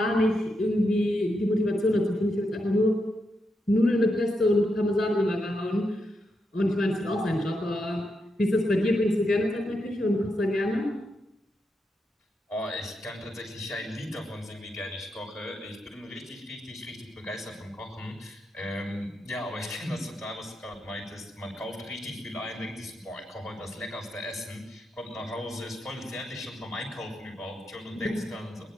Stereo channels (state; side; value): normal; both; correlation 0.84